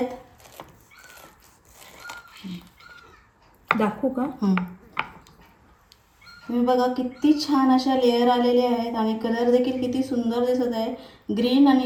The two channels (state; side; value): identical; both; correlation 1.00